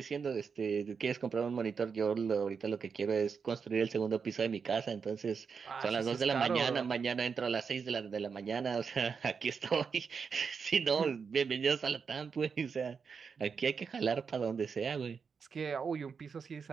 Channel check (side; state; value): left; quieter; 5.8 dB